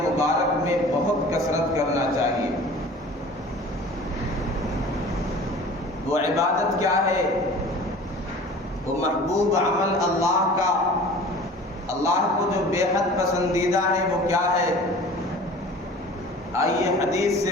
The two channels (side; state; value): both; normal; correlation 0.43